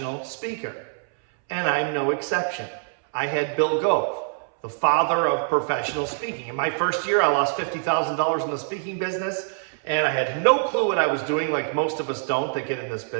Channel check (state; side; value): silent; left; 62 dB below the other